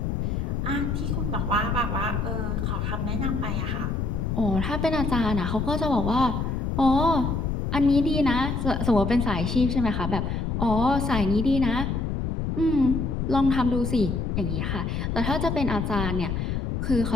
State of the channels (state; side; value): noise; left; rumble, 1 dB below the sound